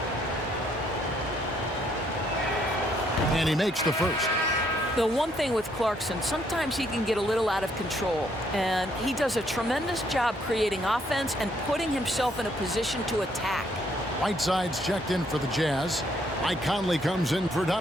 And he makes the first. The one thing with Clarkson, sometimes he can get a little out of control, and he does a tremendous job creating offense and putting himself in a position to attack. Whiteside's checked in for the Jazz. Mike Conley comes in for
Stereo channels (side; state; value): both; normal; correlation 0.69